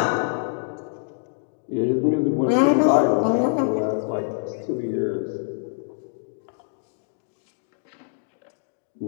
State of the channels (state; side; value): silent; right; digital silence